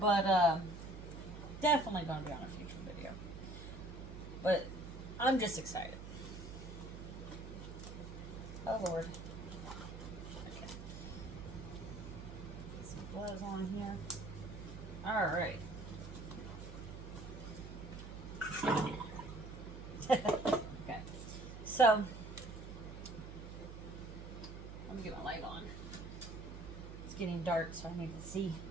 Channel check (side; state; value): right; noise; hum, 10 dB below the sound